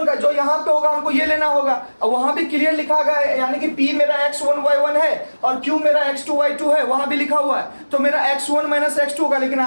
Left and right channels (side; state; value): both; inverted; correlation -1.00